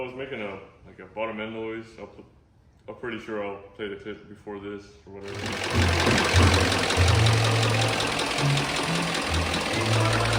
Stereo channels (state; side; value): identical; both; correlation 1.00